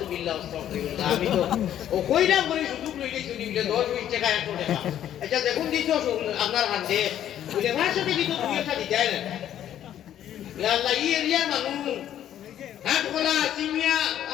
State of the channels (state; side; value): quieter; right; 11.0 dB